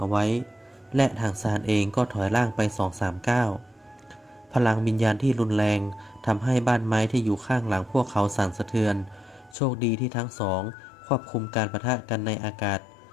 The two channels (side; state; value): right; drops out; at 9.6 s